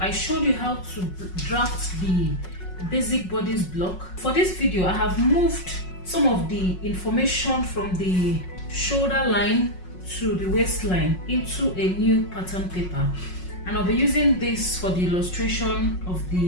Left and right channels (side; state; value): right; late; 5.5 ms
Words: showed you how to draft the basic bodice block. For this video, I have moved some of the information from the shoulder line to the waistline into a new pattern paper, and I'll be using this for the illustration of